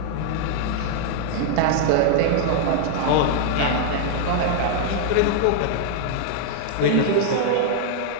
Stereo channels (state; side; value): different; both; correlation -0.01